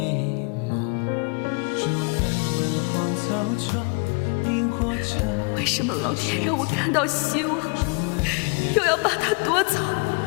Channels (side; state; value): right; quieter; 33.2 dB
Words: 为什么老天让我看到希望，又要把它夺走？